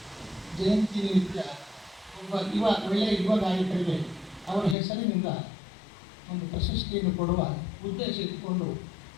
ಜಯಂತಿ ನಿಮಿತ್ತ ಒಳ್ಳೆಯ ಯುವ ಗಾಯಕರಿಗೆ ಅವರ ಹೆಸರಿನಿಂದ ಒಂದು ಪ್ರಶಸ್ತಿಯನ್ನು ಕೊಡುವ ಉದ್ದೇಶ ಇಟ್ಟುಕೊಂಡು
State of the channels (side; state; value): right; drops out; at 4.8 s